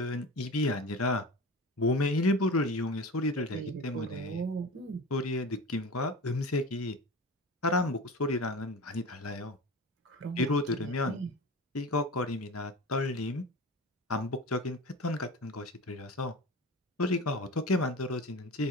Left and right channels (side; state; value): both; normal; correlation 0.32